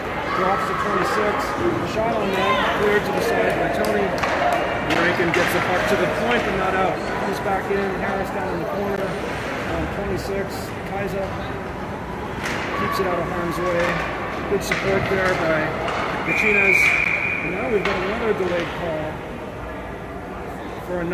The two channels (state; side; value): identical; both; correlation 1.00